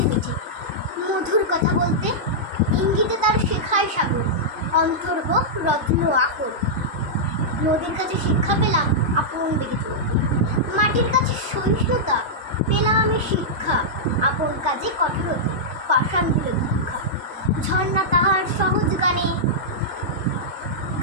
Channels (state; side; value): normal; both; correlation -0.10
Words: মিঠে মধুর কথা বলতে। ইঙ্গিতে তার শেখায় সাগর, অন্তর হোক রত্ন আকর। নদীর কাছে শিক্ষা পেলাম আপন বেগে চলতে। মাটির কাছে সহিষ্ণুতা পেলাম আমি শিক্ষা, আপন কাজে কঠোরতা পাষাণ দিল দীক্ষা। ঝর্ণা তাহার সহজ গানে